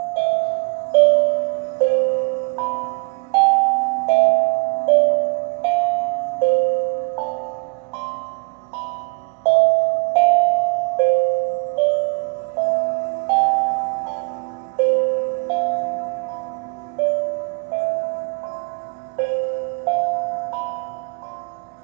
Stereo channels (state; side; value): quieter; left; 34.1 dB